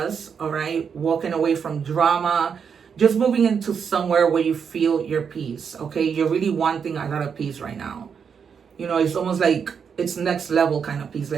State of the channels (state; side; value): quieter; left; 6.7 dB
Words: all right? Walking away from drama, just moving into somewhere where you feel your peace, okay? You're really wanting a lot of peace right now. You know, it's almost like it's next level kind of peace,